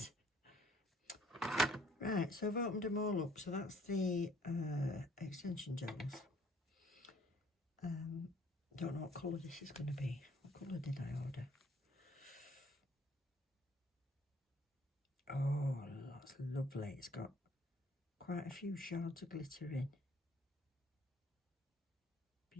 Right, so I've opened them all up. So that's the extension gels. Don't know what colour this is going to be. What colour did I order? Oh, that's lovely. It's got quite a few shards of glitter in.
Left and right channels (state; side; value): normal; both; correlation 0.59